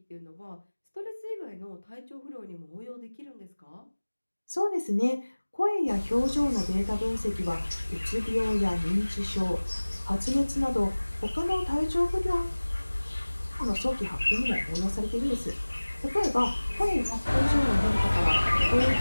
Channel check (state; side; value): inverted; both; correlation -1.00